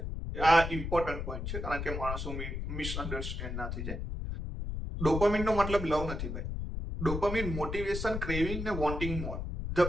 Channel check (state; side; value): noise; left; rumble, 4 dB below the sound